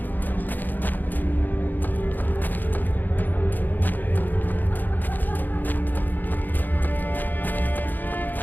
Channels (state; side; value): late; right; 0.087 ms